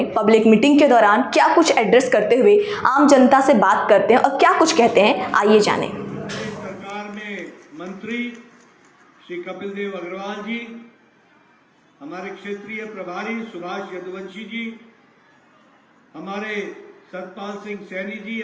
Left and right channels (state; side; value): identical; both; correlation 1.00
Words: पब्लिक मीटिंग के दौरान क्या कुछ एड्रेस करते हुए आम जनता से बात करते हैं और क्या कुछ कहते हैं, आइए जानें। सरकार में मंत्री श्री कपिल देव अग्रवाल जी, हमारे क्षेत्रीय प्रभारी सुभाष यदुवंशी जी, हमारे सतपाल सिंह सैनी जी,